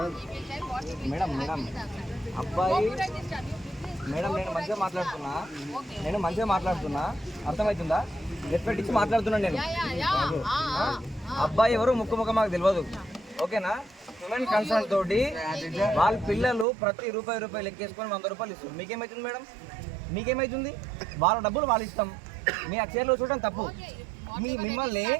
అబ్బాయి మేడం నేను మంచిగా మాట్లాడుతున్నా అర్థమవుతుందా రెస్పెక్ట్ ఇచ్చి మాట్లాడుతున్నాను నేను అబ్బాయి ఎవరు ముక్కు మాకు తెలియదు ఓకేనా హ్యూమన్ కన్సర్న్ తోటి వాళ్ళ పిల్లలు ప్రతి రూపాయి లెక్కేసుకొని 100 రూపాయలు ఇస్తారు మీకేమవుతుంది మేడం మీకేమవుతుంది వాళ్ళ డబ్బులు వాళ్ళు ఇస్తాం మీ ఆ చైర్లో చూడడం తప్పు మిమ్మల్ని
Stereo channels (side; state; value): left; drops out; at 16.7 s